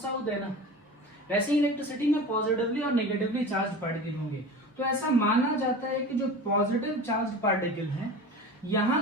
साउथ है ना, वैसे ही इलेक्ट्रिसिटी में पॉजिटिवली और नेगेटिवली चार्ज पार्टिकल होंगे। तो ऐसा माना जाता है कि जो पॉजिटिव चार्ज पार्टिकल हैं, यहां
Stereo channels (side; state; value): both; normal; correlation 0.34